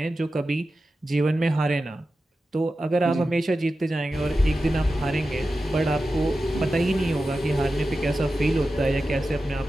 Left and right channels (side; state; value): both; normal; correlation 0.93